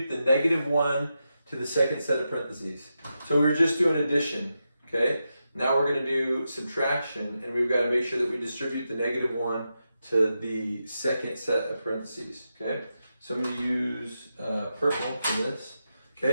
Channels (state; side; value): inverted; both; correlation -0.88